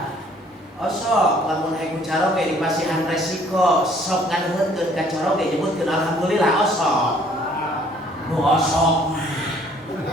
Osok lamun aya caro ge dipasihan resiko, sok nganuhkeun ka caro ge nyebutkeun alhamdulillah osok. Nu osok.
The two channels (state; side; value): normal; both; correlation 0.59